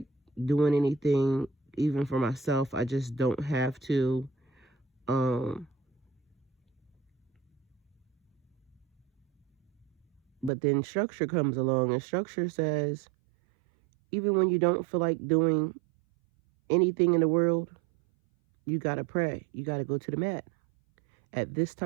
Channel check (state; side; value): drops out; left; at 10.5 s